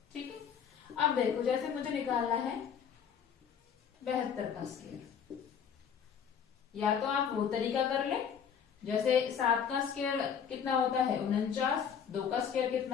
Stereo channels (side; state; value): right; quieter; 7.6 dB